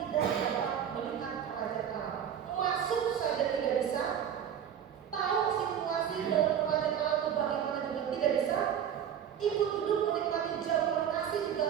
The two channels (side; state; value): left; quieter; 9.0 dB